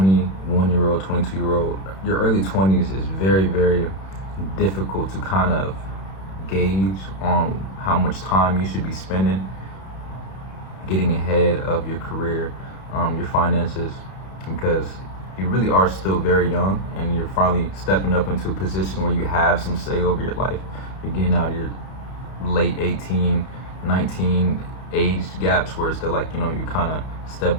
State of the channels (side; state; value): right; late; 31 ms